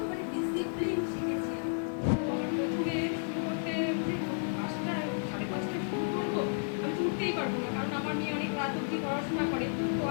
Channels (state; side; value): silent; right; digital silence